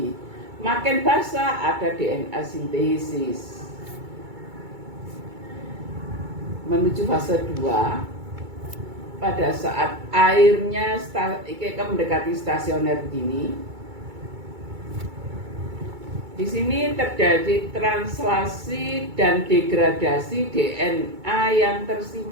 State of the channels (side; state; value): left; late; 2.3 ms